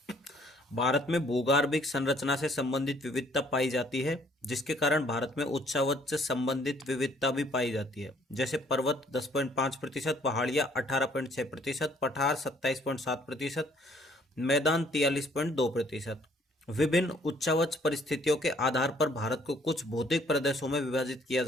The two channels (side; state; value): both; normal; correlation 0.62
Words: भारत में भूगर्भिक संरचना से संबंधित विविधता पाई जाती है, जिसके कारण भारत में उच्चावच से संबंधित विविधता भी पाई जाती है। जैसे पर्वत 10.5%, पहाड़ियाँ 18.6%, पठार 27.7%, मैदान 43.2%। विभिन्न उच्चावच परिस्थितियों के आधार पर भारत को कुछ भौतिक प्रदेशों में विभाजित किया